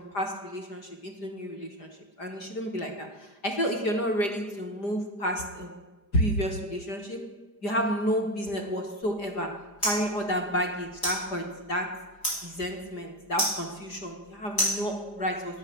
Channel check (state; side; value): late; right; 5.0 ms